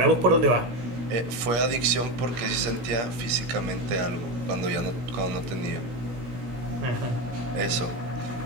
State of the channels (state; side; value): late; left; 17 ms